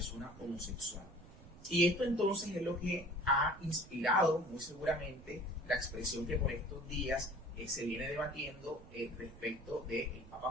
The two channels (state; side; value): noise; right; rumble, 19 dB below the sound